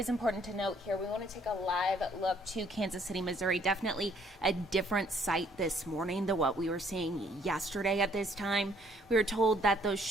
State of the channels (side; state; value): both; normal; correlation 0.64